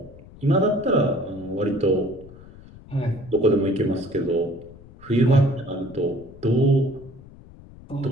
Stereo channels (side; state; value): left; noise; rumble, 20 dB below the sound